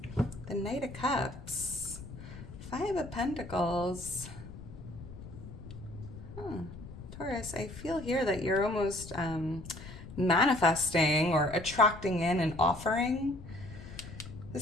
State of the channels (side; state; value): left; noise; rumble, 13 dB below the sound